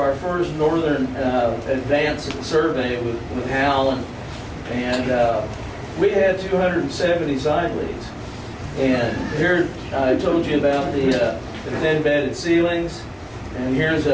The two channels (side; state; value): both; identical; correlation 1.00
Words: first northern advanced survey with Helm, and we had 270 side leads. And here I told you about the thin bedded ceilings, and here's